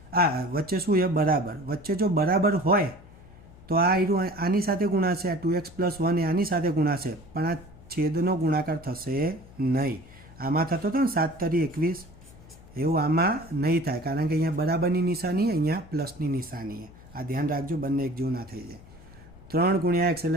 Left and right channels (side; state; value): left; noise; hum, 22 dB below the sound